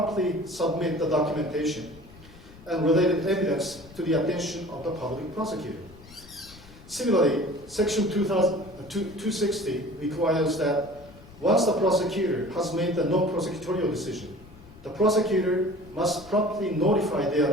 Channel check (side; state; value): left; noise; rumble, 21 dB below the sound